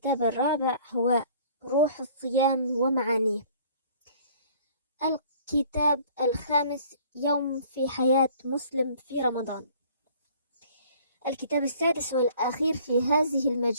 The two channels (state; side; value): inverted; both; correlation -0.54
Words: الرابع هو روح الصيام ومعانيه. الكتاب الخامس يوم في حياة مسلم في رمضان. الكتاب السادس والأخير في هذه